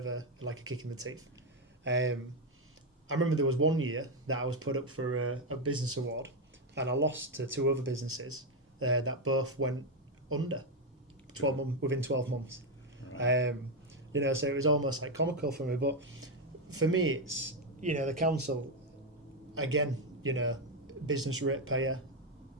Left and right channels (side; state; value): both; normal; correlation 0.06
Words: a kick in the teeth. I remember there was one year that I was put up for a business award, and I lost to 2 other businesses that both went under within 12 months. Right. You know, so it was almost like comical for me. But for me, it's, you know, the council, again, you know, business ratepayer.